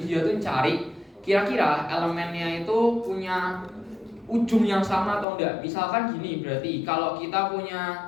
tuh cari kira-kira elemennya itu punya ujung yang sama atau enggak. Misalkan gini, berarti kalau kita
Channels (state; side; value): drops out; right; at 5.2 s